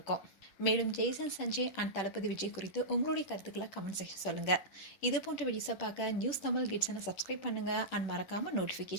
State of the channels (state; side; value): late; right; 10 ms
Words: மேலும் ஜெய்சன் சஞ்சய் அண்ட் தளபதி விஜய் குறித்து உங்களுடைய கருத்துக்களை கமெண்ட் செக்ஷன் சொல்லுங்கள். இது போன்ற வீடியோஸை பார்க்க நியூஸ் தமிழ் கிட்ஸனை சப்ஸ்கிரைப் பண்ணுங்கள். அண்ட் மறக்காமல்